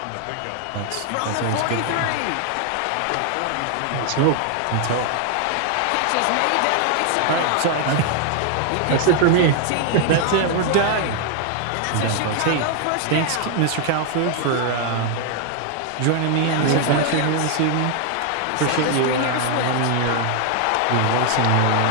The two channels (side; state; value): both; different; correlation 0.00